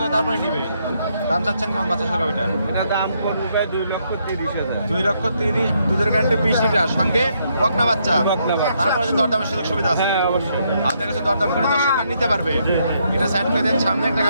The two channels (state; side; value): inverted; both; correlation -0.75